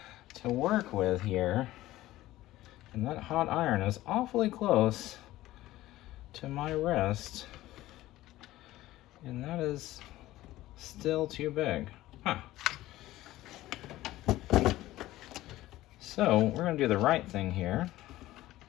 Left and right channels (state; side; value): quieter; right; 16.1 dB